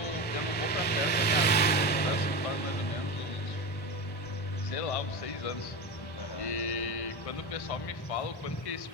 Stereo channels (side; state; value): right; late; 1.1 ms